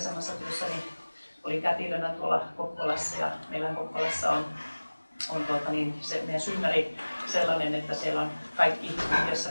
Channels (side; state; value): both; inverted; correlation -1.00